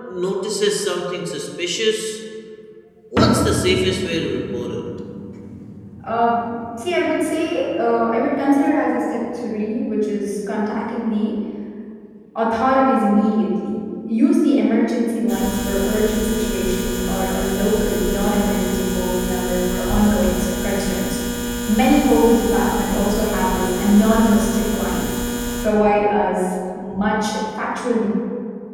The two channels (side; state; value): both; identical; correlation 1.00